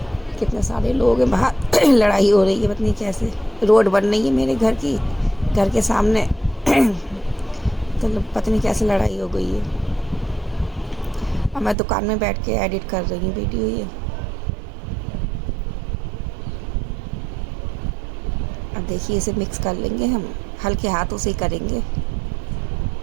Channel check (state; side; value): drops out; left; at 11.8 s